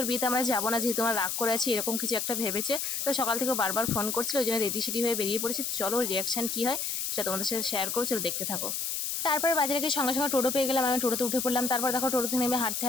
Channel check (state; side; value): noise; left; hiss, 2 dB below the sound